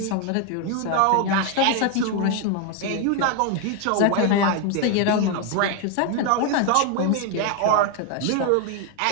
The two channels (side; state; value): both; different; correlation 0.01